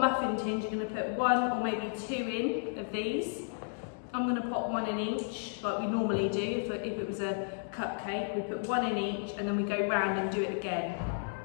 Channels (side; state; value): right; silent; digital silence